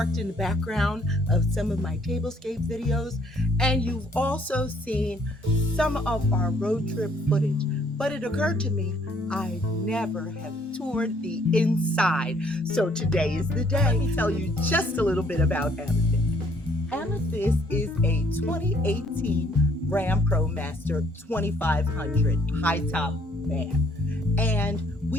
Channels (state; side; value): normal; both; correlation 0.63